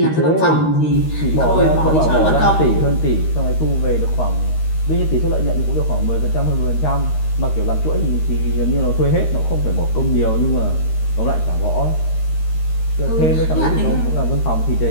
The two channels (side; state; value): right; late; 13 ms